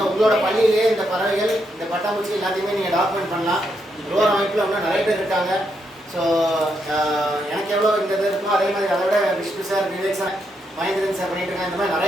உங்களோட பள்ளியிலேயே இந்த பறவைகள் இந்த பட்டாம்பூச்சி எல்லாத்தையுமே நீங்க டாக்குமெண்ட் பண்ணலாம். லோர் அமைப்பில் இன்னும் நிறைய பேர் இருக்காங்க. ஸோ எனக்கு எவ்வளோ இந்த இது இருக்கோ அதே மாதிரி அதை விட Vishnu sir, Vivek sir, Mahendran sir பண்ணிட்டு இருக்காங்க. இந்த மாதிரி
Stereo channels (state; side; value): normal; both; correlation 0.79